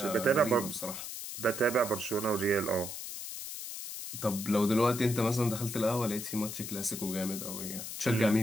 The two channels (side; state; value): left; noise; hiss, 8 dB below the sound